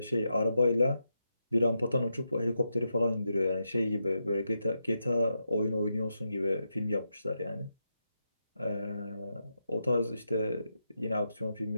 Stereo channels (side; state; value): both; inverted; correlation -0.85